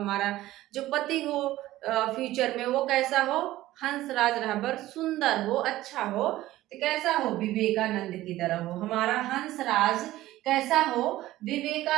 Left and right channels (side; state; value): left; quieter; 15.8 dB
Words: जो पति हो फ्यूचर में वो कैसा हो, हंसराज रहबर, सुंदर हो, अच्छा हो। तो कैसा हो, विवेकानंद की तरह हो। हमारा हंसराज कैसा हो,